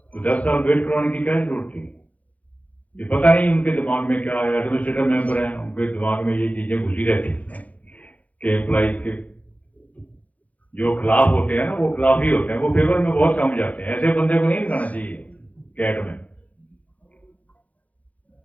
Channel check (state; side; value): late; right; 0.069 ms